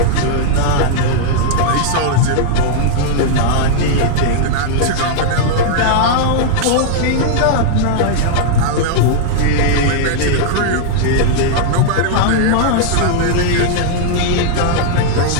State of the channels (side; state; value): both; different; correlation -0.01